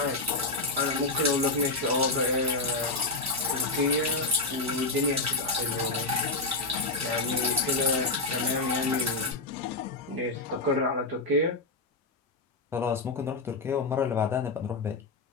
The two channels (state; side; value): quieter; right; 3.3 dB